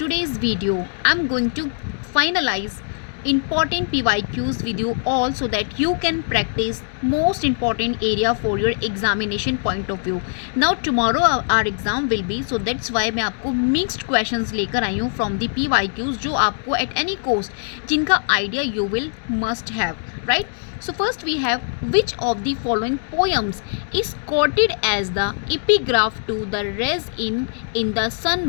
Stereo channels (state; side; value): silent; right; digital silence